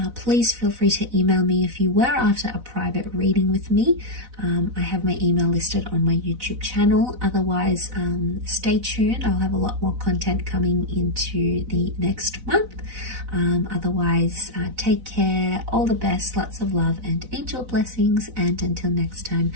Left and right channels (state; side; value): late; left; 4.0 ms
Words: Please feel free to email me if you were after a private reading with me. I have my email listed on my YouTube channel. Otherwise, stay tuned. I'll have a lot more content coming into the next month. Otherwise, take care. All the best. Lots of love and angel blessings. And until next time,